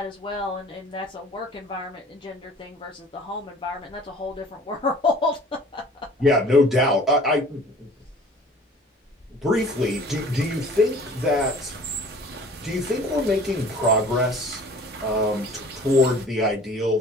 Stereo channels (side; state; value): both; normal; correlation 0.48